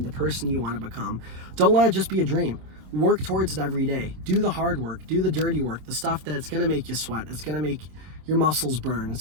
the person you want to become. Don't let it just be a dream. Work towards it every day. Do the hard work. Do the dirty work. The stuff that's going to make you sweat. It's going to make your muscles burn.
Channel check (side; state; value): left; late; 27 ms